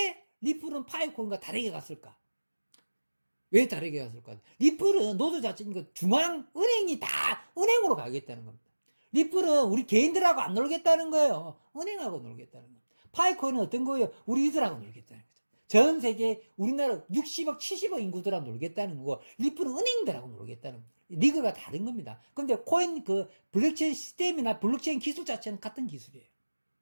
리플은 파이코인과 다르게 갔을까? 왜 다르게 갔을까? 리플은 노조 자체니까 중앙은행이 다 은행으로 가겠다는 겁니다. 리플은 우리 개인들하고 안 놀겠다는 거예요. 은행하고 놀겠다는 겁니다. 파이코인은 어떤 거예요? 우리들하고 놀겠다는 거죠. 전 세계 우리나라 60억, 70억 인구들하고 놀겠다는 거고, 리플은 은행들하고 놀겠다는 겁니다. 리그가 다른 겁니다. 근데 코인 블록체인 시스템이나 블록체인 기술 자체는 같은 기술이에요.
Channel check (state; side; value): inverted; both; correlation -1.00